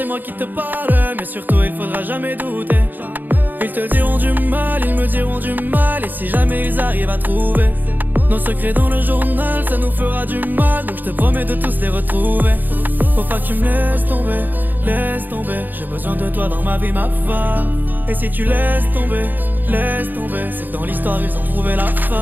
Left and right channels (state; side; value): late; left; 0.087 ms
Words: moi qui te parle. Mais surtout il faudra jamais douter. Ils te diront du mal, ils me diront du mal. Et si jamais ils arrivent à trouver nos secrets dans le journal, ça nous fera du mal. Donc je te promets de tous les retrouver. Faut pas que tu me laisses tomber, laisse tomber. J'ai besoin de toi dans ma vie, ma femme. Et si tu laisses tomber, c'est que dans l'histoire ils ont trouvé la